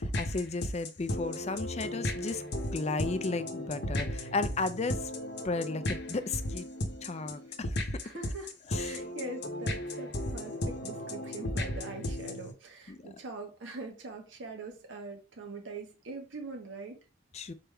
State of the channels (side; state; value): both; normal; correlation 0.48